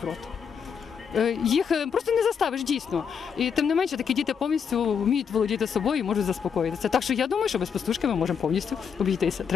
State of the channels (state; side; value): quieter; right; 6.9 dB